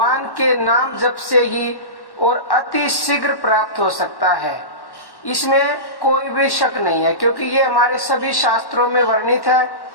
के नाम जप से ही और अति शीघ्र प्राप्त हो सकता है। इसमें कोई भी शक नहीं है, क्योंकि ये हमारे सभी शास्त्रों में वर्णित है,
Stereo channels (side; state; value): right; late; 1.1 ms